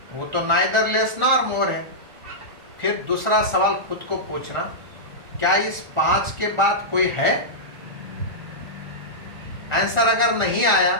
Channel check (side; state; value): left; late; 1.4 ms